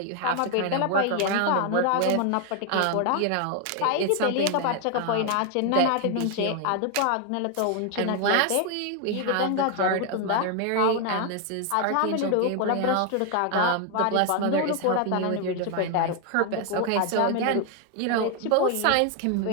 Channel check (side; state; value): both; different; correlation 0.01